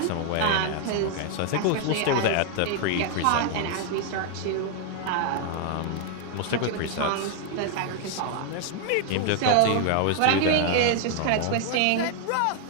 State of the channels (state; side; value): different; both; correlation 0.00